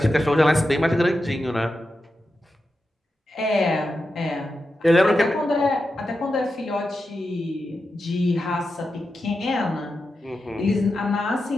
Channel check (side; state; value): both; normal; correlation 0.89